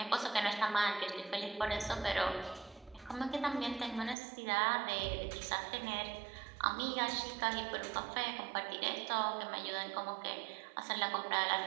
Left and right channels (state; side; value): drops out; left; at 4.2 s